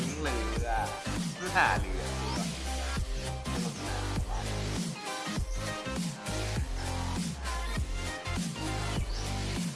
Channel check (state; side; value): identical; both; correlation 1.00